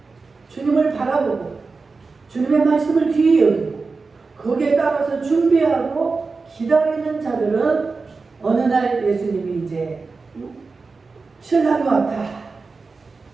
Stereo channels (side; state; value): left; quieter; 4.2 dB